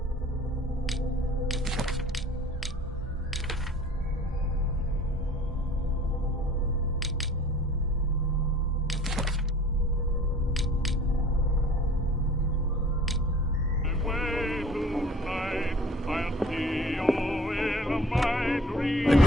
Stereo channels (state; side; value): normal; both; correlation 0.49